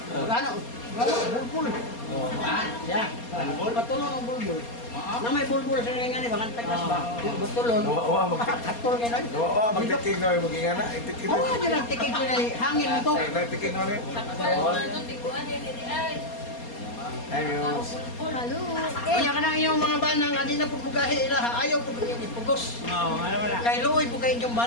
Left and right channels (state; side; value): late; right; 4.3 ms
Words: ano, bulbul. Siya, katulong ang bulbul. Na may bulbul sa nga ni, bakang tagas ba? Katulong. Wa Katulong nga na. magtiking na yung maging ana. Itiking Oo nga dyan ang tikig ko na hangin mo to. Itiking na rin. Ayos. Kaya ka na iyong mga bana nga di na po bugahe ilaha, ayaw po yung ipugos. Oh, ano wala. Kay luoy po kayo yung